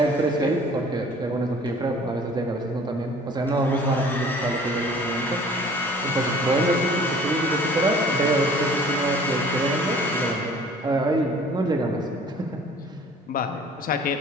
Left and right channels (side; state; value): both; normal; correlation 0.50